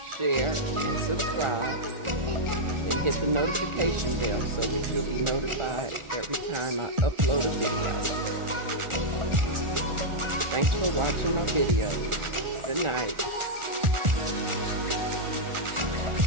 share, and subscribe, and hit the notification bell so that you'll be notified every time I upload a video. Thanks for watching my videos. Good night.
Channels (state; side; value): late; left; 1.4 ms